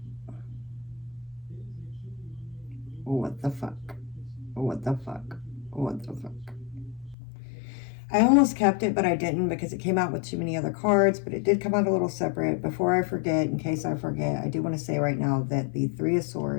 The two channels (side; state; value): right; drops out; at 7.2 s